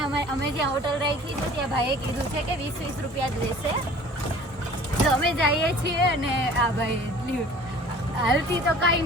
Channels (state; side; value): normal; both; correlation 0.48